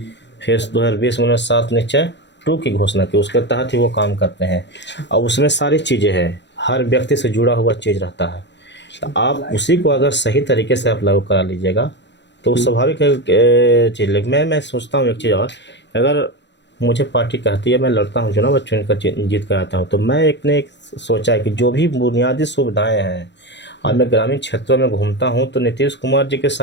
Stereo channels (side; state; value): right; late; 0.52 ms